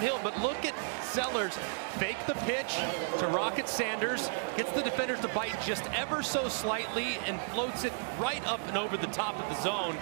but look at Sellers fake the pitch to Rocket Sanders, gets the defenders to bite just ever so slightly and floats it right up and over the top of the zone.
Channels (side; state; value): left; silent; digital silence